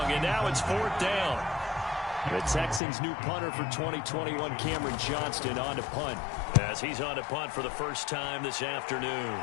and now it's 4th down. The Texans' new punter for 2021, Cameron Johnston, on to punt. As he's on to punt for the first time this afternoon.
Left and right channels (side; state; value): right; drops out; at 2.8 s